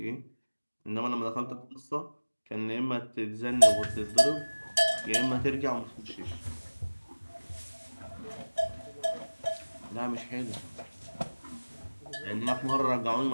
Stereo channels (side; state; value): both; inverted; correlation -1.00